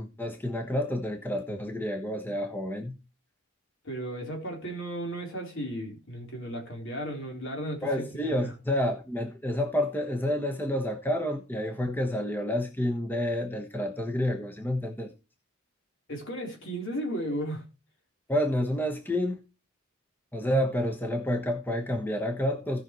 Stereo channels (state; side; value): normal; both; correlation 0.63